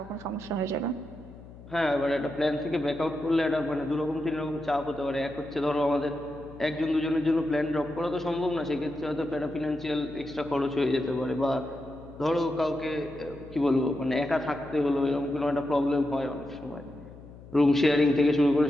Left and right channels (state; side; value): noise; left; hum, 18 dB below the sound